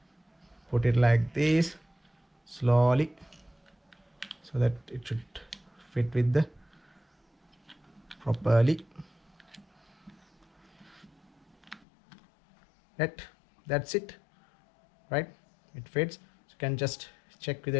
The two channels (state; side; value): drops out; right; at 11.9 s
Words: put it like this slowly, so that it should fit with the properly. That's it, right? It fits. So you can just check whether